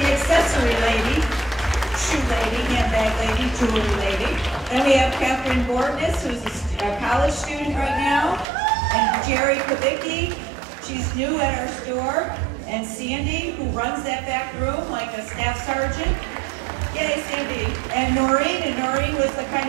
accessory lady, shoe lady, handbag lady, jewelry lady. Then we have Catherine Bordness, who's a college student right now. And Jerry Kubicki, she's new at our store. And Sandy, who runs that back room like a staff sergeant. Yay, Sandy. And Noreen was the kind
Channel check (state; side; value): drops out; left; at 8.5 s